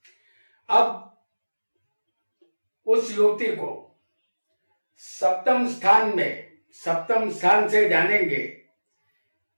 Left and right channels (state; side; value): inverted; both; correlation -1.00